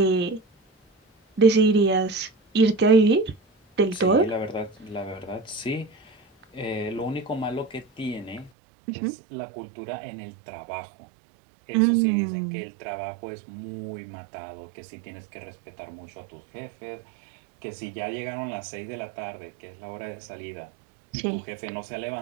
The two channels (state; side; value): drops out; left; at 8.5 s